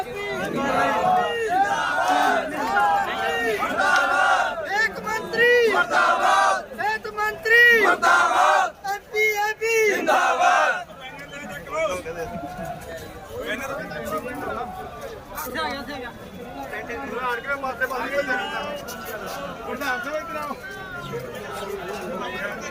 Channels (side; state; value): both; identical; correlation 1.00